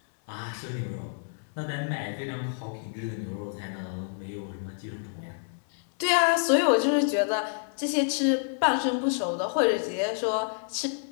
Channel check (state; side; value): silent; right; 59 dB below the other